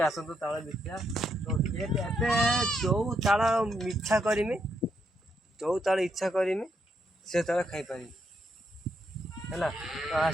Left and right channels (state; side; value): normal; both; correlation 0.78